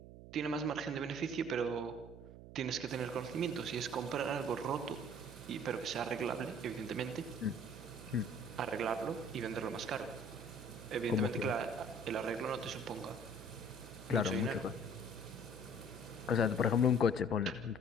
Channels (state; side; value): noise; right; hum, 15 dB below the sound